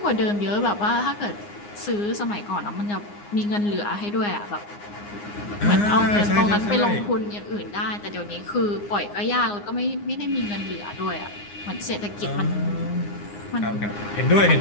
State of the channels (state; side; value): late; right; 9.7 ms